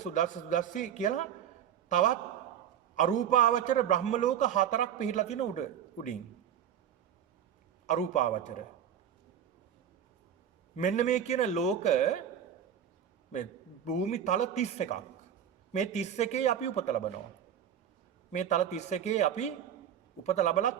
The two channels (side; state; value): left; quieter; 9.3 dB